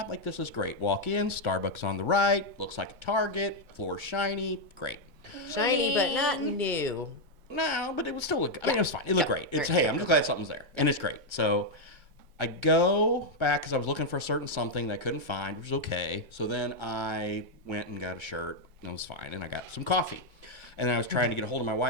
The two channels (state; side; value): late; left; 2.2 ms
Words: Like, this is great. Walk in, Starbucks on the right, looks like a Target, floor shiny, great. Shiny, but not new. No, but it would still look, it was fine. It looked great. It's, Right. hey, I'm just glad something's there. And it's great. So I go back because I was looking for a certain something that I couldn't find, which was okay. So then I went and got a shirt, and it was fine. And I got some coffee. And then I was trying to get a hold of my